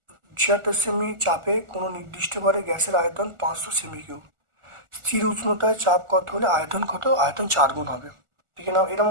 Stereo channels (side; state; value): left; late; 1.4 ms